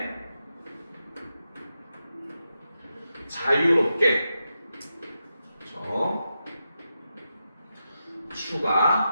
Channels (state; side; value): inverted; both; correlation -0.88